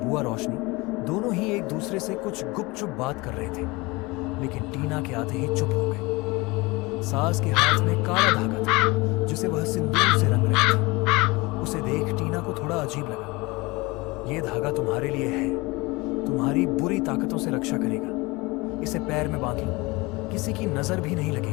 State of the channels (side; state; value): right; quieter; 23.8 dB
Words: रोशनी दोनों ही एक दूसरे से कुछ गुपचुप बात कर रहे थे, लेकिन टीना के आते ही चुप हो गए। सास के हाथ में काला धागा था जिसे वह सिंदूर से रंग रही थी। उसे देख टीना को थोड़ा अजीब लगा। यह धागा तुम्हारे लिए है, तुम्हारी बुरी ताकतों से रक्षा करेगा। इसे पैर में बांध लो, किसी की नजर भी नहीं